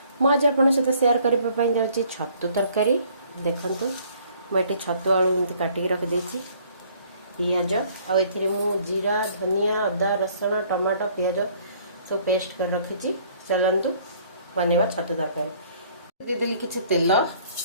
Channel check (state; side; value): inverted; both; correlation -0.59